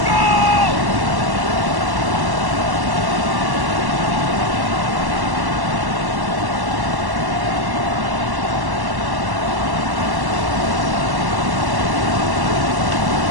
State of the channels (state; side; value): late; left; 1.1 ms